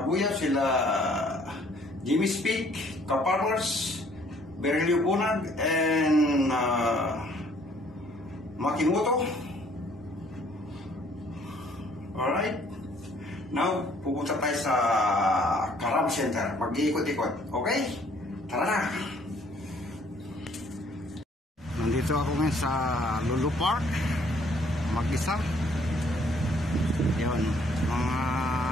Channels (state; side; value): normal; both; correlation 0.61